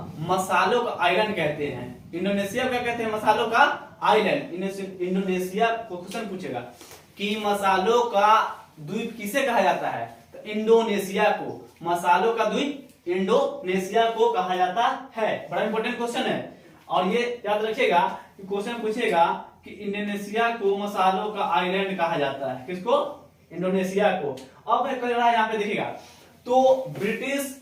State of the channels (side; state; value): both; identical; correlation 1.00